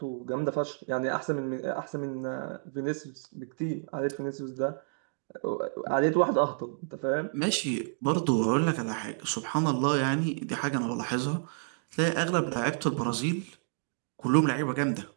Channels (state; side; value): silent; left; digital silence